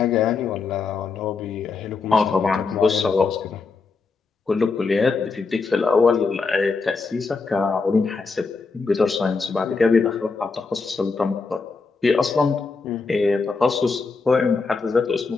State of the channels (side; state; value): right; quieter; 4.4 dB